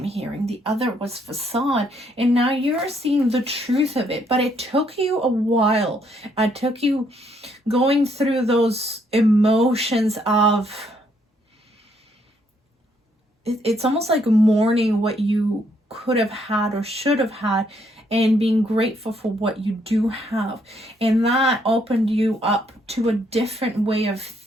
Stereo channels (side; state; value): both; normal; correlation 0.71